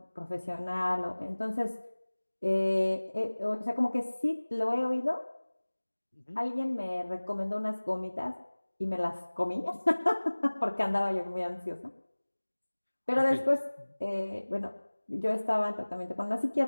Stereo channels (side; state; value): both; inverted; correlation -1.00